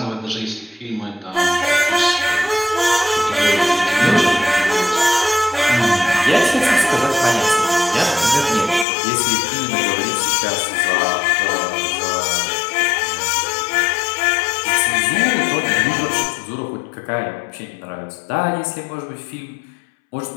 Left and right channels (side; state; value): right; drops out; at 8.8 s